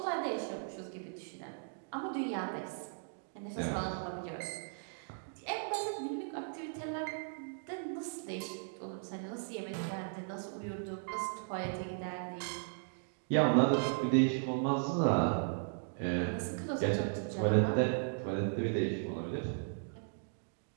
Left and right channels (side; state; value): left; silent; digital silence